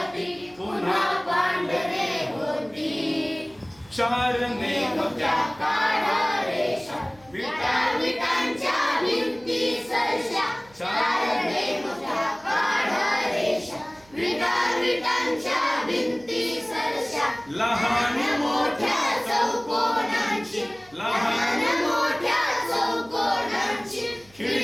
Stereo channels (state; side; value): noise; right; hum, 28 dB below the sound